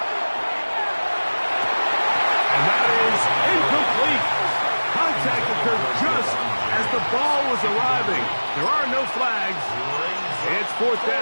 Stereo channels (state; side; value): inverted; both; correlation -1.00